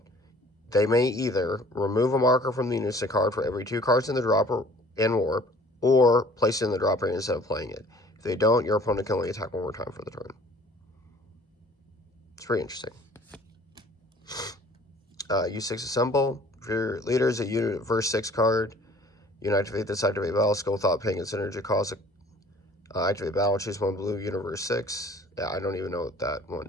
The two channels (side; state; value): both; normal; correlation 0.52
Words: They may either remove a marker from the Unison card for every 2 cards in the drop in Warp, or place it in the drop area instead of playing it. If they don't, your opponent can only attack 1 more time for the turn. It's pretty interesting. U6 Assemble. For your leader is a unit verse 6 card. You can activate this, activate battle skill without paying its energy cost. Activate battle, choose 1 blue, universe 6. Yeah, I don't even know what that one